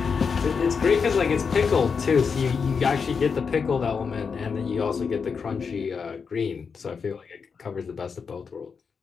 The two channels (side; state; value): right; quieter; 5.7 dB